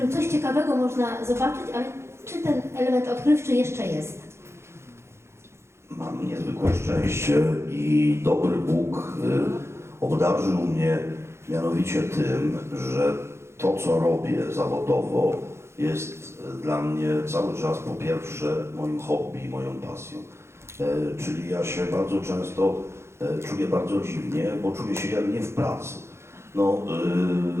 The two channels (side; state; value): left; late; 0.13 ms